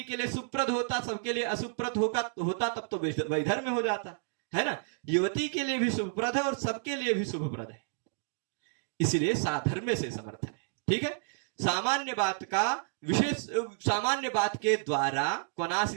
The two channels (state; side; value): silent; left; digital silence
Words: के लिए शुभप्रद होता, सबके लिए अशुभप्रद होता तब तो वैधर्म्य हो जाता, है ना? युवती के लिए भी शुभप्रद है और सबके लिए भी शुभप्रद है, इसलिए साधर्म्य से समर्थ है। ठीक है, सामान्य बात का विशेष, सामान्य बात के द्वारा